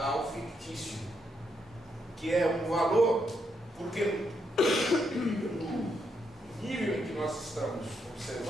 fictício, que é um valor, porque no nível em que nós estamos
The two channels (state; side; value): normal; both; correlation 0.79